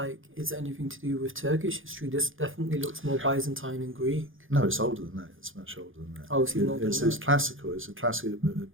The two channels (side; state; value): left; late; 0.58 ms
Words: it's anything to do with Turkish history. This definitely looks more Byzantine and Greek. No, it's older than that. It's much older than that. Oh, it's even older than that. It's classical. It's a classical, it